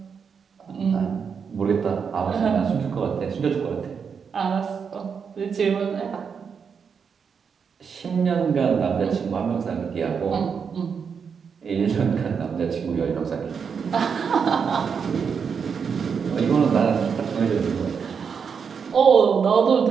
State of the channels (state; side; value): quieter; left; 6.4 dB